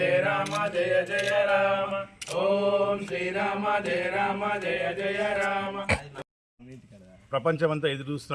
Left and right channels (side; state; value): both; identical; correlation 1.00